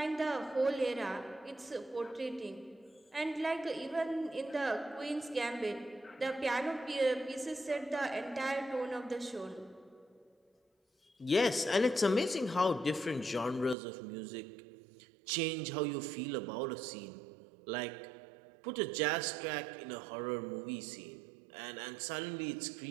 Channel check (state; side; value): drops out; left; at 13.8 s